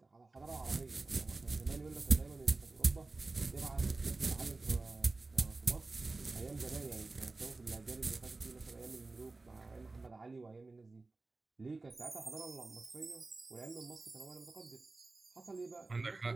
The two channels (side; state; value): left; quieter; 3.5 dB